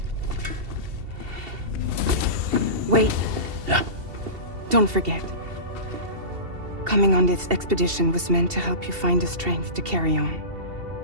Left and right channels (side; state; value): left; late; 2.7 ms